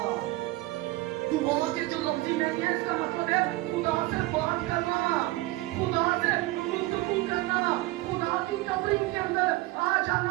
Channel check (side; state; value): left; quieter; 19.5 dB